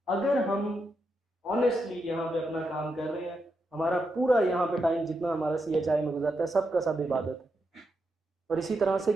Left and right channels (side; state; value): both; normal; correlation 0.84